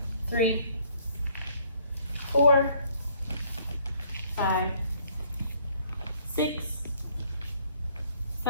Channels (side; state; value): both; inverted; correlation -0.63